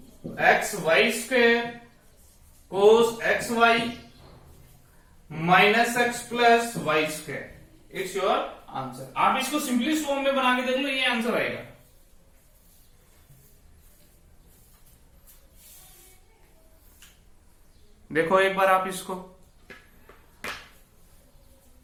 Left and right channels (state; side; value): identical; both; correlation 1.00